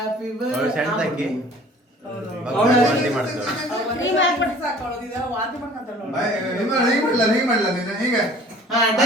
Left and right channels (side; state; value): both; normal; correlation 0.49